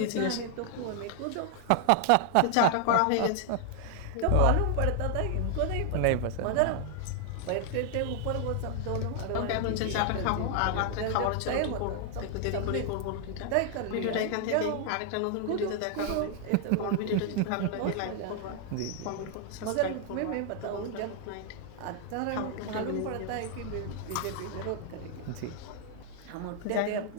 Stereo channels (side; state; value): both; different; correlation 0.00